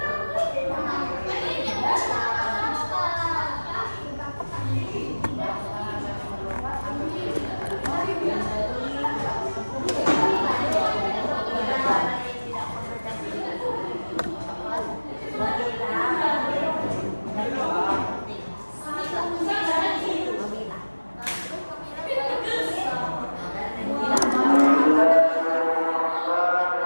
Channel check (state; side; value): inverted; both; correlation -1.00